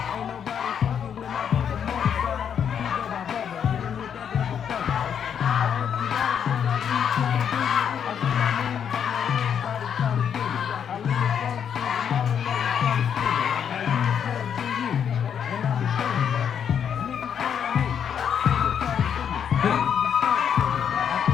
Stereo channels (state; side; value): quieter; right; 8.1 dB